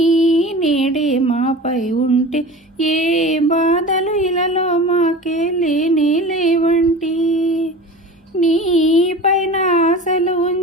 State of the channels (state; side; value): normal; both; correlation 0.36